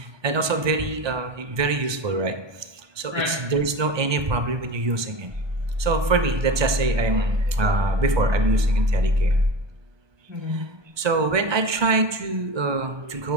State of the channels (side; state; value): left; late; 1.2 ms